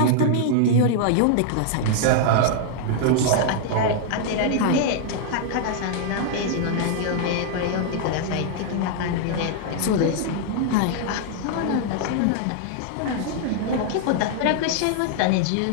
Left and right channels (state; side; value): different; both; correlation -0.01